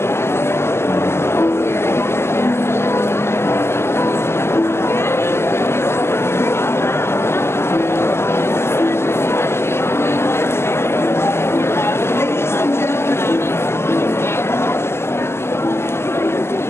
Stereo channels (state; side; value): late; right; 0.12 ms